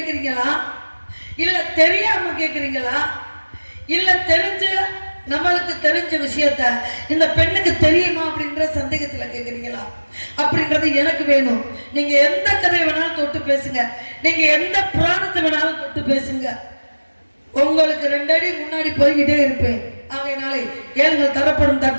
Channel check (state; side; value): inverted; both; correlation -1.00